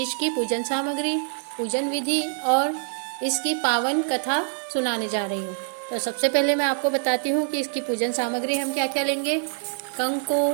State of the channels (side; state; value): left; silent; 59 dB below the other